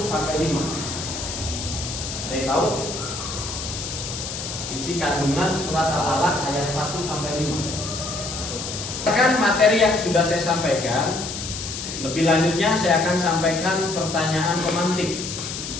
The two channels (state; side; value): noise; left; hiss, 7 dB below the sound